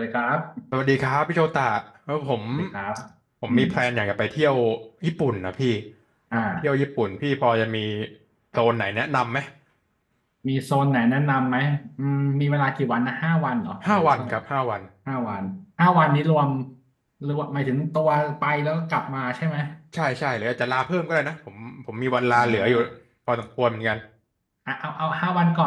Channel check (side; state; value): both; identical; correlation 1.00